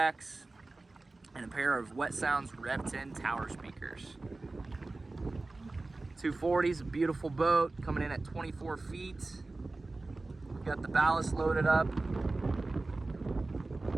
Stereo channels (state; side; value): quieter; left; 3.3 dB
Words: and a pair of Wet Sounds Rev 10 tower speakers. 240 is a beautiful boat coming in at 24 feet. We've got the ballast loaded up